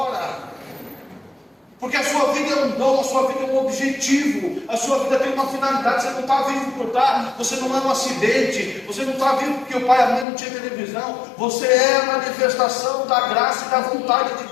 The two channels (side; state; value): right; drops out; at 10.2 s